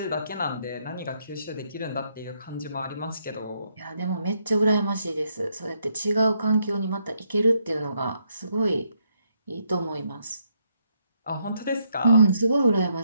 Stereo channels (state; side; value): inverted; both; correlation -0.76